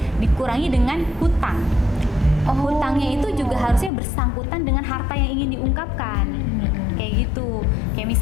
dikurangi dengan hutang. Hutangnya itu juga harusnya bersangkutan dengan harta yang ingin diungkapkan. Kayak gitu. Kayak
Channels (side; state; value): right; drops out; at 3.9 s